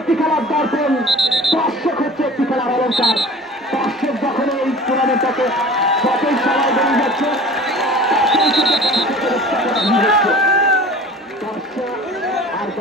একটি খেলার দর্পণ, দর্শক হচ্ছে একটি খেলার অলঙ্কার। দর্শক যখন এই টুর্নামেন্টটাকে যতই সবাই বেরিয়ে যাচ্ছে, দর্শক আর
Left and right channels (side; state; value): both; normal; correlation 0.42